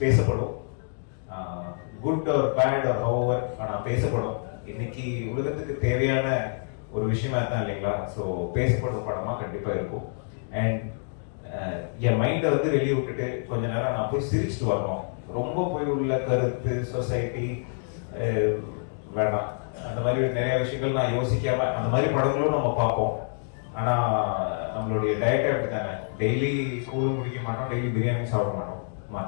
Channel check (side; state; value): right; silent; digital silence